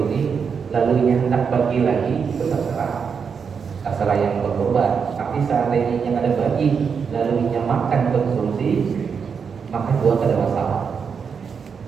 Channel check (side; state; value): left; quieter; 6.3 dB